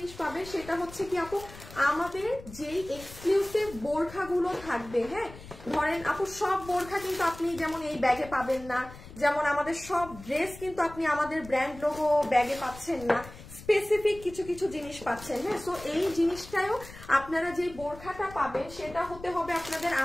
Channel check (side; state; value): left; noise; rumble, 17 dB below the sound